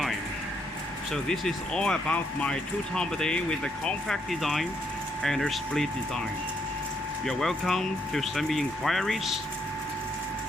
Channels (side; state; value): both; normal; correlation 0.74